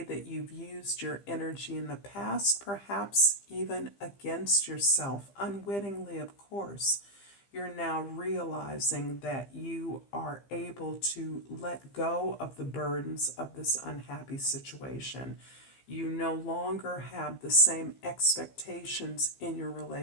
you've used your energy in the past, perhaps even against yourself, unwittingly, of course, You're now realizing that you are able to let go of the burdens of this unhappy situation. You no longer have the same expectations in your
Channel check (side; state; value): right; late; 15 ms